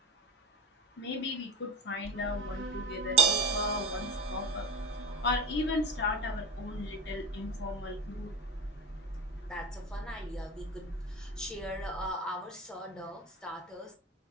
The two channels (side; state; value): both; normal; correlation 0.29